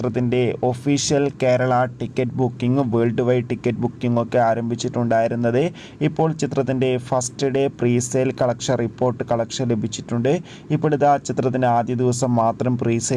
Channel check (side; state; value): both; identical; correlation 1.00